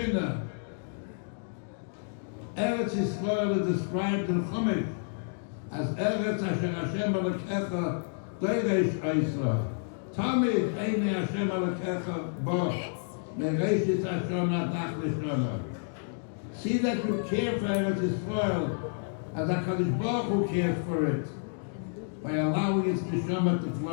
Eretz Yisrael is described in Chumash as Eretz Asher Hashem Elokecha Doresh Oisra. Tamid Eine Hashem Elokecha Bo Mereshit Hashem Adach Lishona. See that you care for Eretz Yisrael as HaKadosh Baruch Hu cares for it, by allowing its neshama to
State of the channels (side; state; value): right; silent; digital silence